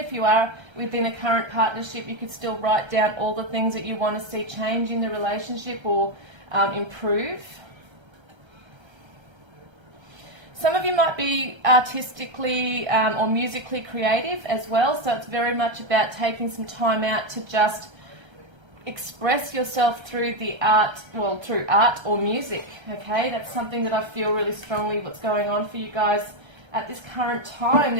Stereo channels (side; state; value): left; late; 1.3 ms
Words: you are within a current partnership, you could still write down all the things that you want to see change in the relationship or improve. Some of you might be artistically or musically creative as well, so it's very much about taking some time out to just express yourself through the art, well, through art or music, okay? That's something that I feel really strongly what's going on for you guys at this current time.